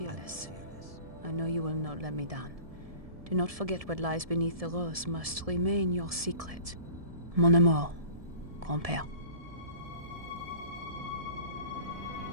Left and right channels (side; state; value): left; late; 1.7 ms